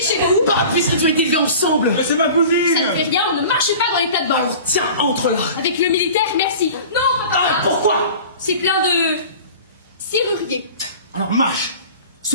chez vous. Bah, puisqu'ils ont été élevés ensemble. Mais c'est ma Ça cousine. ne fait rien, on ne marche pas dans les plates-bandes. Alors tiens, entre là. Avec le militaire, merci. Non, papa. Ah, pourquoi? C'est plein de serruriers. Alors marche.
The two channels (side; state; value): both; inverted; correlation -0.40